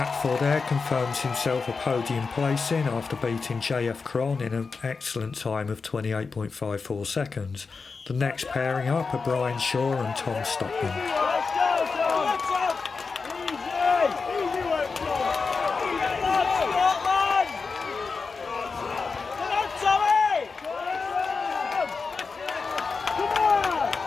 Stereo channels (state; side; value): quieter; right; 4.7 dB